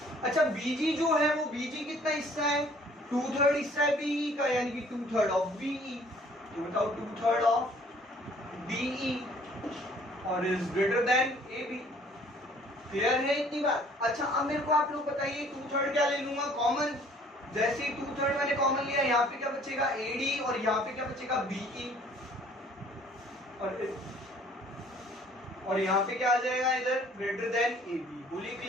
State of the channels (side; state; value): both; normal; correlation 0.57